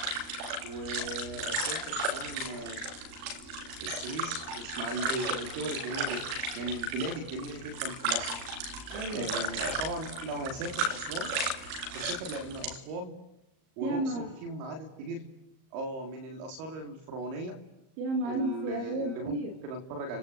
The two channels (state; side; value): late; left; 38 ms